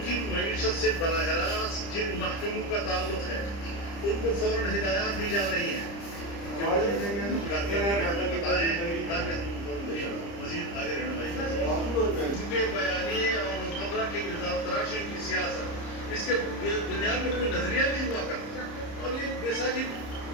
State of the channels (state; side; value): late; right; 30 ms